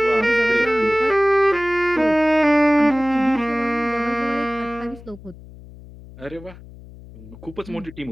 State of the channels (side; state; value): left; noise; hum, 19 dB below the sound